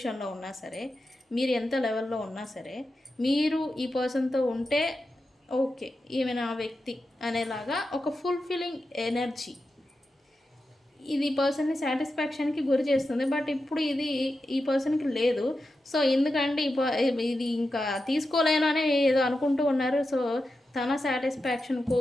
ఉన్నా సరే, మీరు ఎంత లెవెల్లో ఉన్నా సరే, మీరు ఈ పర్సన్తో ఉంటే ఓకే ఈమె నా వ్యక్తి అనేలాగా ఒక ఫుల్ఫిల్లింగ్ ఎనర్జీ ఇది పర్సన్ని సాటిస్ఫాక్షన్కి గురి చేస్తుంది. బట్ ఇప్పుడు ఇది ఈ పర్సన్కి లేదు. సో ఎందుకంటే ఇది ఇంకా తీసుకోలేను అని ఏదో అనుకుంటూ ఉన్నారు. సో తన సాటిస్ఫాక్షన్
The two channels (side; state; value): both; normal; correlation 0.90